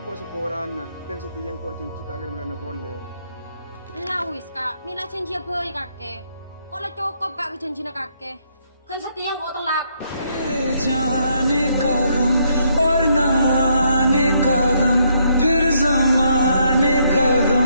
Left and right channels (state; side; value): inverted; both; correlation -0.73